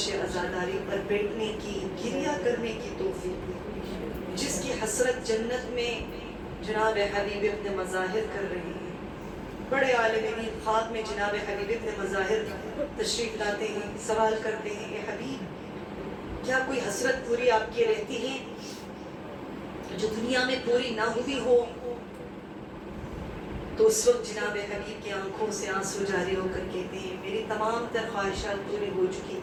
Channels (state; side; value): identical; both; correlation 1.00